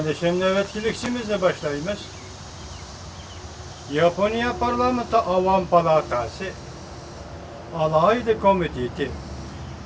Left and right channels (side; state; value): both; identical; correlation 1.00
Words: nöbetçilikçimizle başlayımız. Japonya Parlamento Avam Palatası Alaylı Komiteti